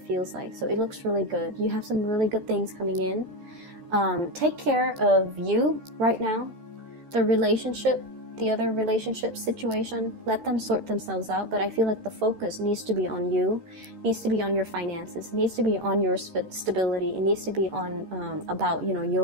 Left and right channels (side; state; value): left; late; 13 ms